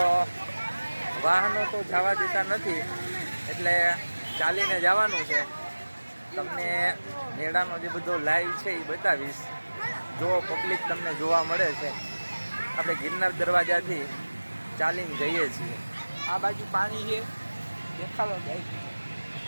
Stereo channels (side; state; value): both; inverted; correlation -1.00